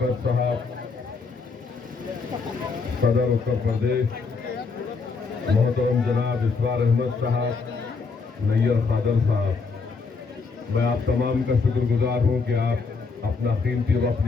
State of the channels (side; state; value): right; quieter; 4.6 dB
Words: साहब, सदर उत्तर प्रदेश मोहतरम जनाब इसरार अहमद साहब, नैयर खादर साहब, मैं आप तमाम का शुक्रगुजार हूँ कि आप अपना कीमती वक्त